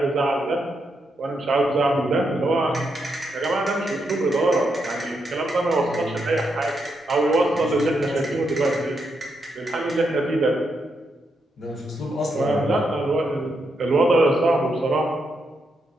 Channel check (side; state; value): both; normal; correlation 0.81